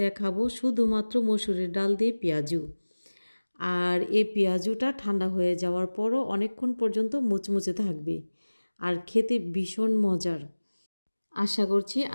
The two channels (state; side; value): inverted; both; correlation -1.00